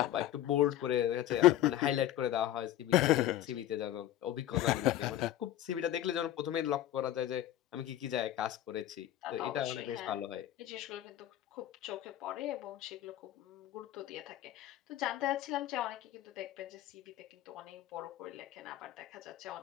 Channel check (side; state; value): right; quieter; 13.0 dB